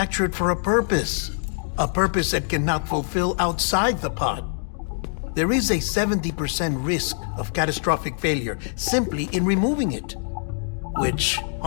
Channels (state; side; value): silent; right; digital silence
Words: for a purpose. A purpose that cannot fulfill outside the pod. There is a 70% risk of catastrophic failure simply in removing it. Which